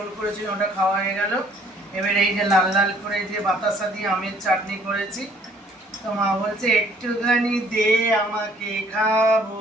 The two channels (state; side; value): normal; both; correlation 0.60